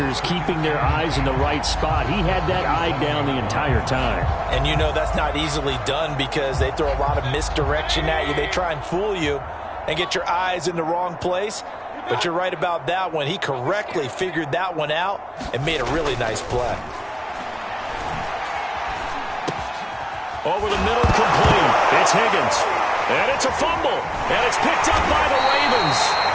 keeping their eyes in the right spot, he had that eye down the entire time. And you know that's not easily done because they throw a lot of misdirection at you. They try and fool you and get your eyes in the wrong place. But you're right about that one. He correctly figured that one out and made a really nice play. Over the middle, complete. It's Higgins. And it's a fumble. And it's picked up by the Ravens.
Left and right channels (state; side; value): identical; both; correlation 1.00